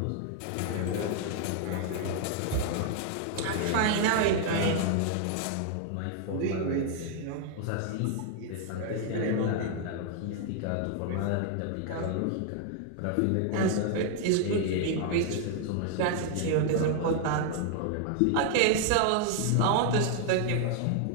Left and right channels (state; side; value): different; both; correlation 0.00